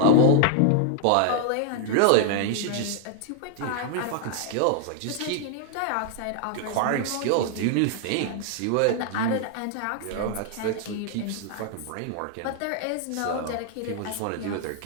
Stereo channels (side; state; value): both; different; correlation 0.00